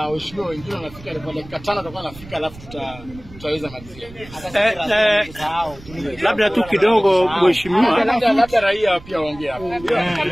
wengine wanafika kwa dakika 5 tutakuwa anafika alafu tutaweza malizia. Labda tu kidogo mheshimiwa, labda raia pia waongee hapa.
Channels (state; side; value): noise; right; rumble, 18 dB below the sound